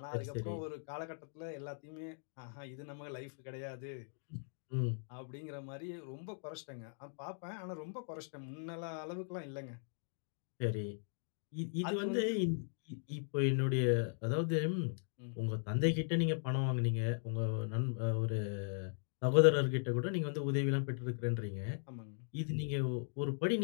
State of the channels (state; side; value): silent; right; digital silence